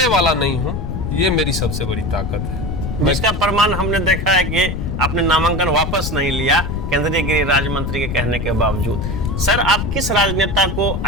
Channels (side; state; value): left; noise; rumble, 4 dB below the sound